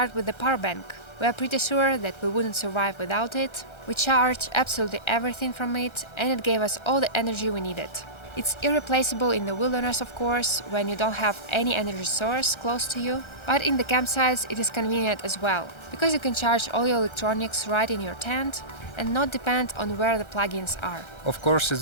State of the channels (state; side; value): late; right; 1.3 ms